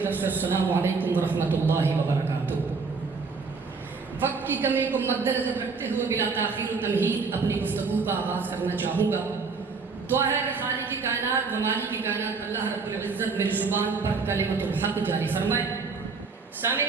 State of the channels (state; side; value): quieter; left; 4.7 dB